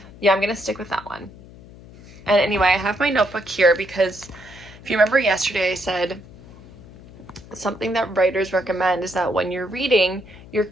Yeah, I'm gonna stick with that one. And anyway, I have my notebook here because if you remember yesterday, I said something that writers recommend is that when you're reading, you're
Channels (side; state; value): left; noise; hum, 20 dB below the sound